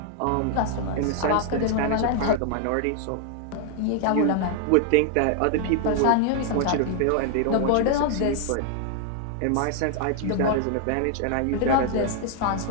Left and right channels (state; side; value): different; both; correlation 0.00